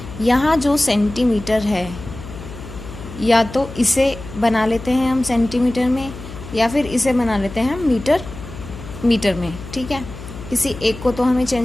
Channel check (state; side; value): noise; left; hum, 13 dB below the sound